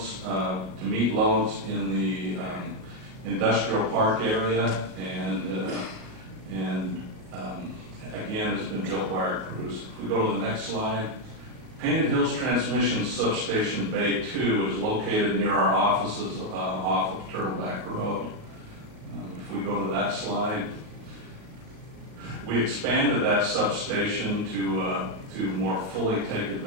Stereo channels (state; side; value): late; left; 38 ms